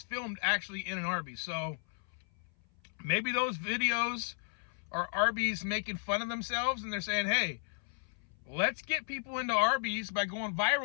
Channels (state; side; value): silent; right; 55 dB below the other